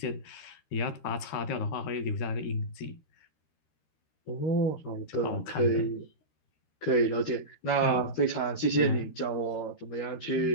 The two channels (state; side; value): late; right; 13 ms